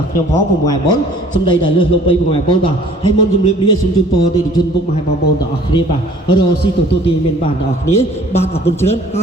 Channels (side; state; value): both; normal; correlation 0.52